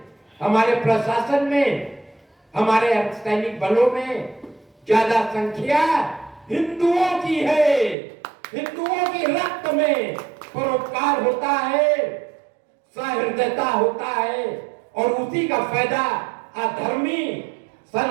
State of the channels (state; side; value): drops out; left; at 8.0 s